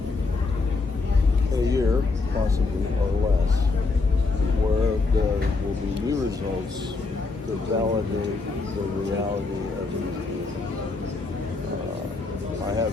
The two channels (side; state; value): right; quieter; 3.9 dB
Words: in a year, possibly, or less, where there will be new results to validate the reality of these beings. I have